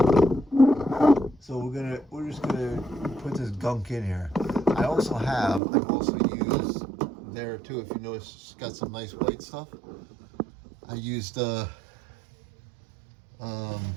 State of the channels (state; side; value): drops out; left; at 5.6 s